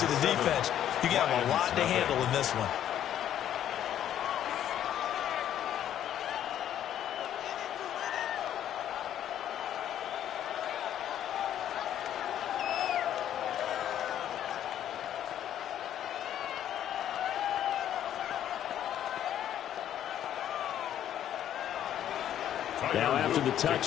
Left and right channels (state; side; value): quieter; right; 10.8 dB